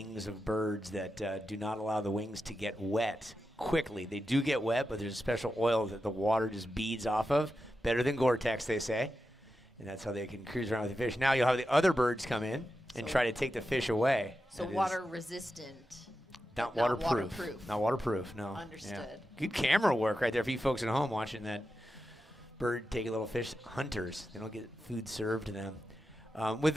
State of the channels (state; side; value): normal; both; correlation 0.90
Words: of birds that do not allow the wings to get wet quickly. They do get wet, but there's a special oil that the water just beads off of. Better than Gore-Tex, they say. And that's how they can cruise around with the fish. Now you'll have the other birds come in and try to take the fish away. So That is water resistant. not not waterproof. waterproof. Not waterproof, no. Understood. Yeah. Good camera work right there for you folks at home watching that bird take a little fish. Hunters, they don't get food served to them.